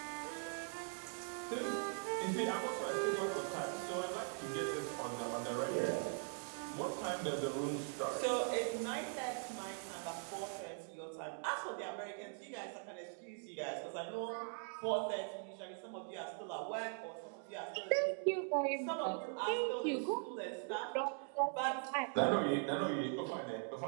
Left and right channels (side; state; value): left; silent; 50 dB below the other